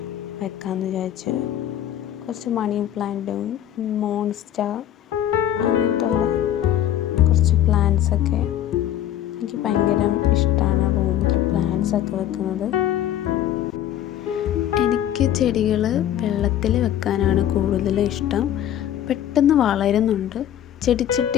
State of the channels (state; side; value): quieter; right; 11.4 dB